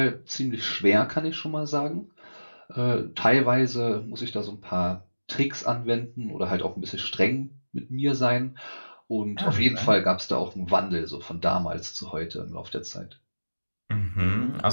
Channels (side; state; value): both; inverted; correlation -1.00